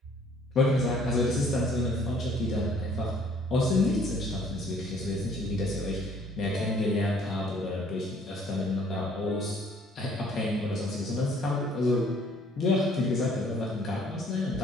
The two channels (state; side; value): normal; both; correlation 0.59